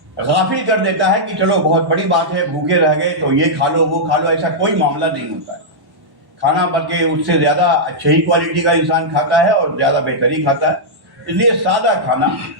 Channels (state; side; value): late; left; 1.1 ms